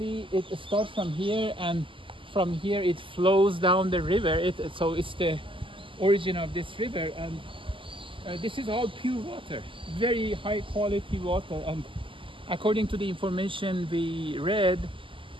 it starts from here, and from here it flows down the river. So it's the origin of this river, and this is all pure water, very high quality water, and according to the information we read,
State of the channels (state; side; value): late; left; 0.25 ms